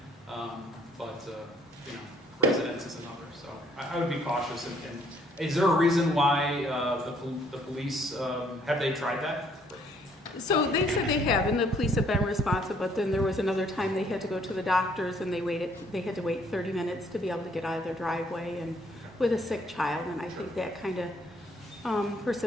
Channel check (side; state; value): both; normal; correlation 0.65